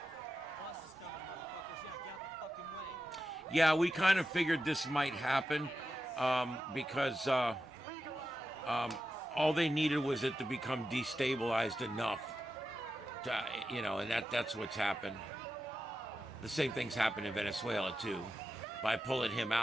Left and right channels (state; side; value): normal; both; correlation 0.90